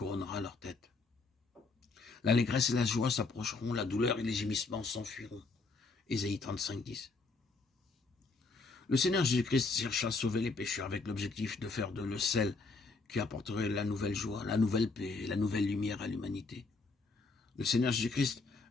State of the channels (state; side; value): quieter; right; 4.0 dB